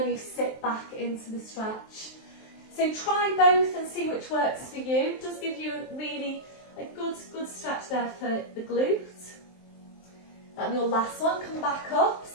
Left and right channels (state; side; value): late; right; 23 ms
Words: you sit back into the stretch. So try both and see which works for you. It does give you a good stretch there for the glute. And your last one, come back up.